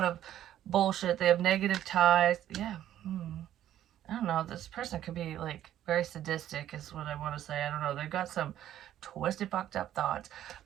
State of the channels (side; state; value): left; quieter; 11.8 dB